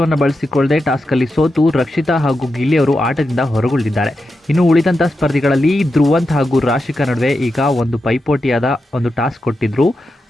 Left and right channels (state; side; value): normal; both; correlation 0.88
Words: ಬಳಸಿಕೊಳ್ಳದೆ ಟಾಸ್ಕಲ್ಲಿ ಸೋತು ರಕ್ಷಿತಾ ಹಾಗೂ ಗಿಲ್ಲಿ ಅವರು ಆಟದಿಂದ ಹೊರಗುಳಿದಿದ್ದಾರೆ. ಇನ್ನು ಉಳಿದಂಥ ಸ್ಪರ್ಧಿಗಳಲ್ಲಿ ಧ್ರುವಂತ್ ಹಾಗೂ ರಾಶಿಕಾ ನಡುವೆ ಈಗ ಒಂದು ಪೈಪೋಟಿಯಾದ ಒಂದು ಟಾಸ್ಕ್ ಕೊಟ್ಟಿದ್ರು.